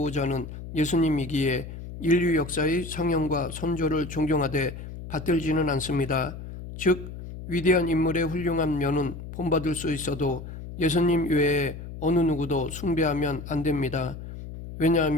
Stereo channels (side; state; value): left; noise; hum, 11 dB below the sound